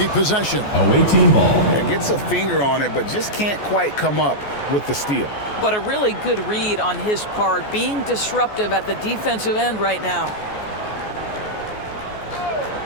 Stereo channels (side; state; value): right; late; 14 ms